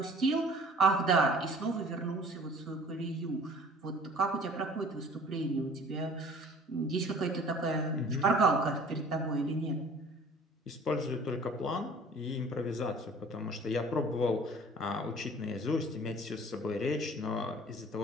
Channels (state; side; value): normal; both; correlation 0.49